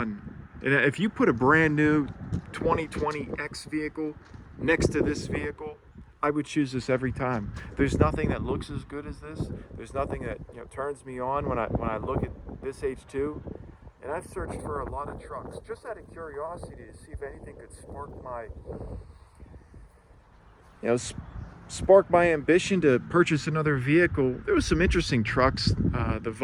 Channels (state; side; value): identical; both; correlation 1.00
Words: And if you put a brand new 2020X vehicle next to this vehicle, I would choose this every time. There's nothing that looks as good as this. There's nothing that turns me on when I look at this H2. And I've searched for a lot of trucks just out of curiosity to see if anything could spark my ambition to purchase another vehicle. There was some interesting trucks. The